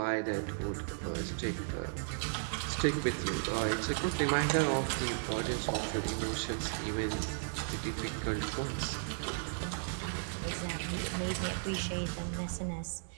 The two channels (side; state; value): left; silent; 54 dB below the other